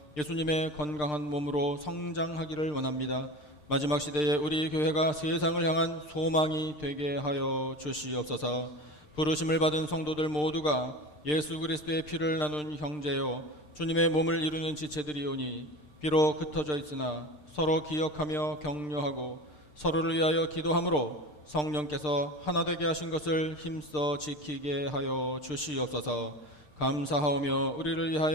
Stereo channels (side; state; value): right; late; 6.6 ms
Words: 예수님의 건강한 몸으로 성장하기를 원합니다. 마지막 시대에 우리 교회가 세상을 향한 소망이 되게 하여 주시옵소서. 부르심을 받은 성도들 모두가 예수 그리스도의 피를 나눈 형제요 주님의 몸을 이루는 지체들이오니 비록 흩어져 있으나 서로 기억하며 격려하고 서로를 위하여 기도함으로 성령께서 하나 되게 하신 것을 힘써 지키게 하여 주시옵소서. 감사하오며 우리를